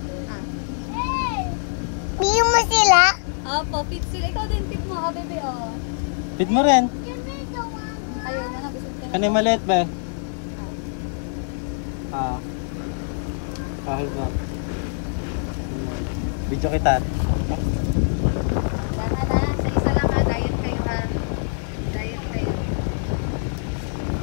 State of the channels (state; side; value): silent; right; digital silence